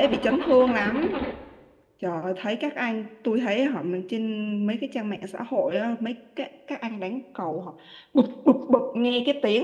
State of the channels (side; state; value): both; identical; correlation 1.00